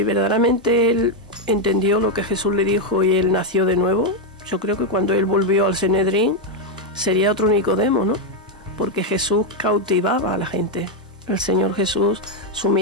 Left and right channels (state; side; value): normal; both; correlation 0.02